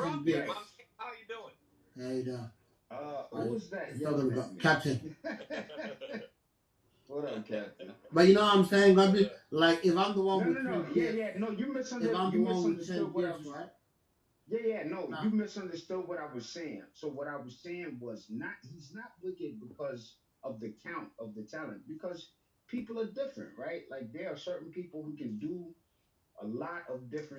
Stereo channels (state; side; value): identical; both; correlation 1.00